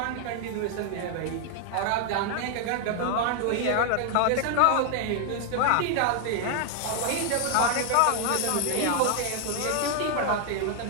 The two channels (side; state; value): both; different; correlation 0.00